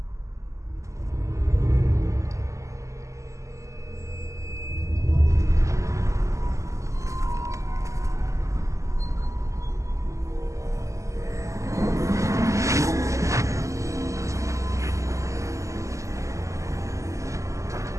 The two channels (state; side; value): late; left; 0.15 ms